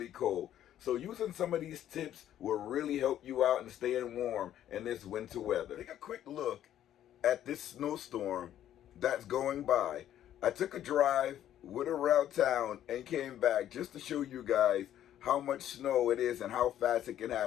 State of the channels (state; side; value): quieter; right; 11.4 dB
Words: cold. So using some of these tips will really help you out in staying warm in this winter weather. Take a quick look at this snowstorm that's going by. I took a drive, went around town, and came back just to show you guys how much snow it is and how fast it can